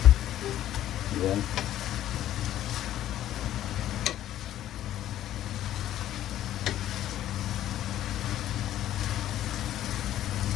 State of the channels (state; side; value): quieter; right; 12.5 dB